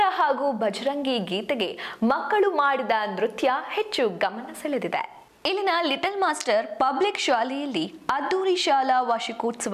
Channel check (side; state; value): both; identical; correlation 1.00